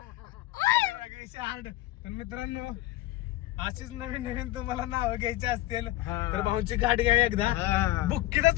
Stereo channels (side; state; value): right; quieter; 16.4 dB